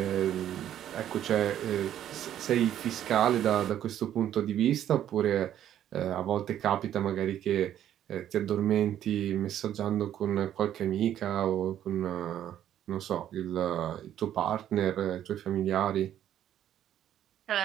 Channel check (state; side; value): quieter; left; 11.1 dB